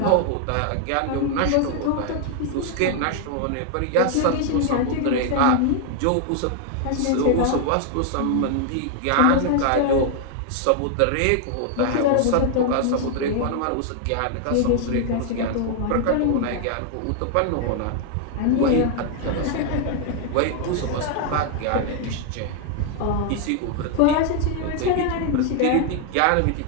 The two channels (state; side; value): different; both; correlation 0.00